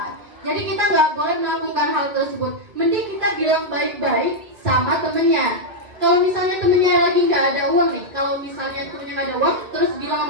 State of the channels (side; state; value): left; late; 2.0 ms